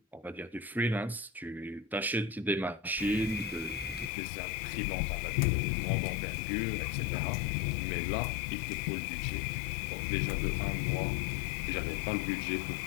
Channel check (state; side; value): drops out; right; at 4.1 s